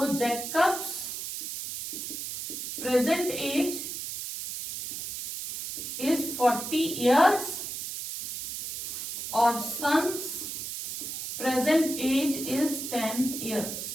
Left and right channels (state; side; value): noise; right; hiss, 6 dB below the sound